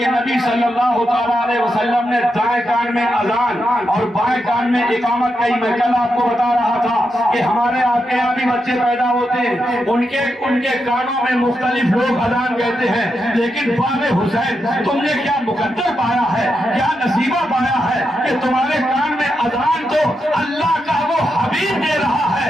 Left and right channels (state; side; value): normal; both; correlation 0.85